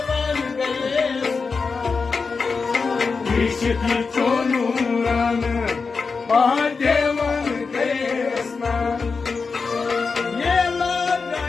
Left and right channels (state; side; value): quieter; right; 4.7 dB